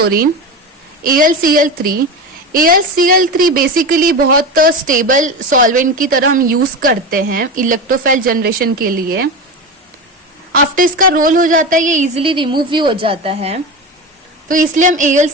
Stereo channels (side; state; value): both; normal; correlation 0.23